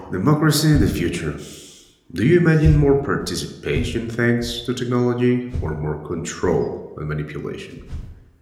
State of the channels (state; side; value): identical; both; correlation 1.00